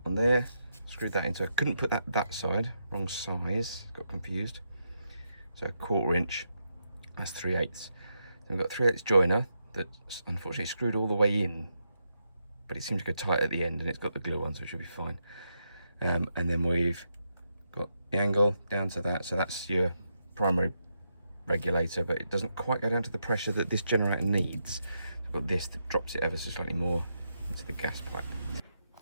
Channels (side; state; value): both; inverted; correlation -0.82